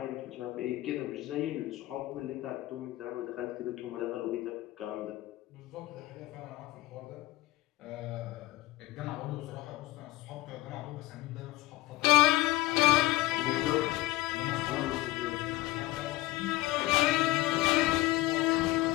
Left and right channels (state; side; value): quieter; right; 17.8 dB